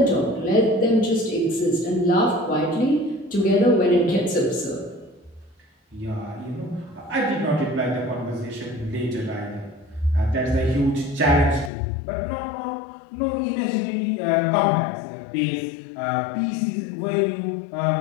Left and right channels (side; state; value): right; drops out; at 11.7 s